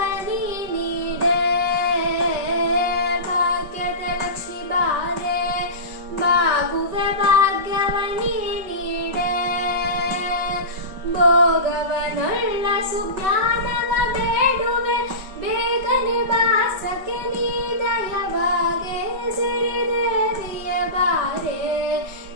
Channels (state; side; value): late; left; 5.2 ms